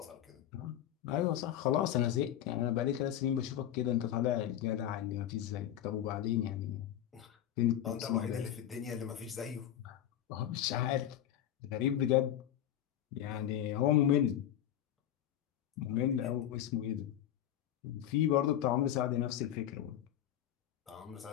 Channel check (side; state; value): right; quieter; 11.3 dB